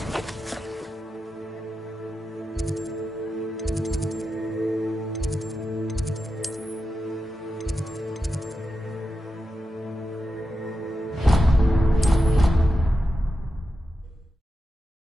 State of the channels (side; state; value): both; normal; correlation 0.89